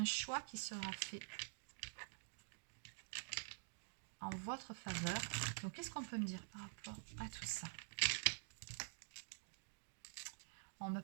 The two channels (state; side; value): silent; left; digital silence